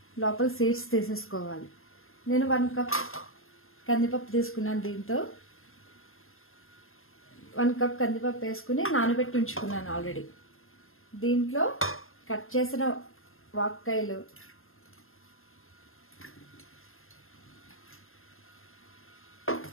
లోపల సీడ్స్ తీసేసుకోవాలి. నేను 1 కప్ కందిపప్పు తీసుకున్నాను. దీంతో 1 కప్ కందిపప్పు వేసుకుని నానబెట్టి ఉంచుకున్నాను ఆల్రెడీ. దీంట్లో కట్ చేసిన వాక్కాయలు,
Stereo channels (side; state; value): right; late; 0.61 ms